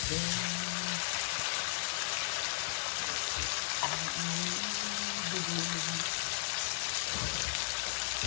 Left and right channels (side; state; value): right; silent; digital silence